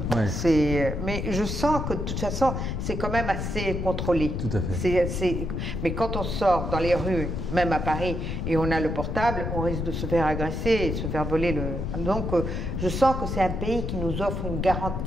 c'est... Mais je sens que, de toute façon, c'est quand même assez contrôlé. Tout à fait. Mais quand on sort dans les rues, même à Paris, et on a le portable, on risque de se faire agresser et de se faire voler le... Donc, je sens que c'est un pays qui nous offre une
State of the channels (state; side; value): noise; left; rumble, 3 dB below the sound